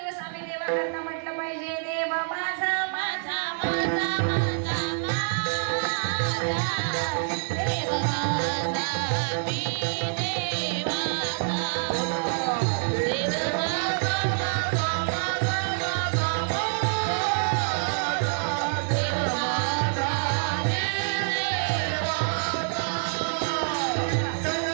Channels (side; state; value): left; silent; digital silence